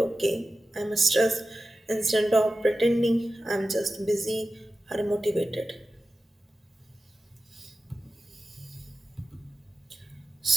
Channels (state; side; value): normal; both; correlation 0.93